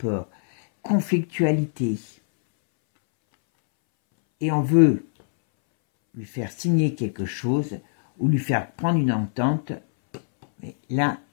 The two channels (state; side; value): silent; right; 63 dB below the other